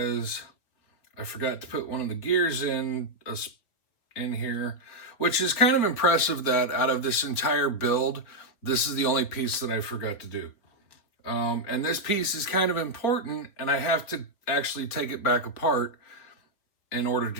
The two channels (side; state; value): right; late; 4.5 ms